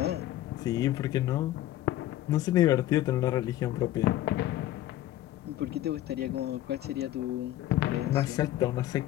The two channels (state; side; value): quieter; right; 14.0 dB